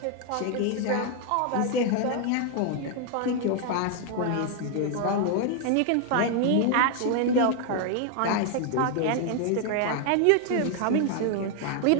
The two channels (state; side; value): different; both; correlation 0.00